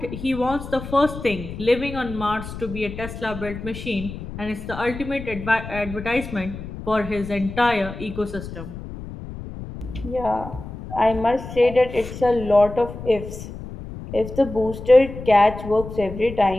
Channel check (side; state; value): left; noise; rumble, 11 dB below the sound